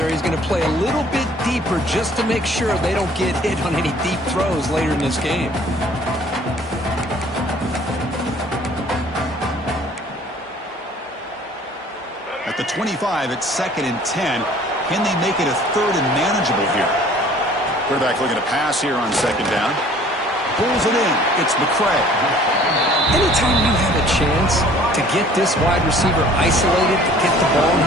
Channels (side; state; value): both; normal; correlation 0.53